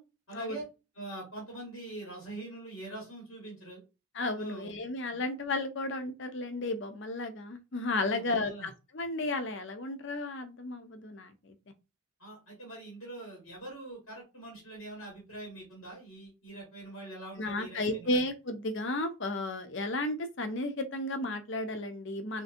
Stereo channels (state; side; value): normal; both; correlation 0.05